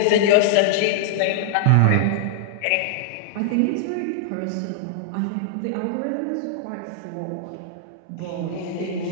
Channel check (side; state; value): both; different; correlation -0.01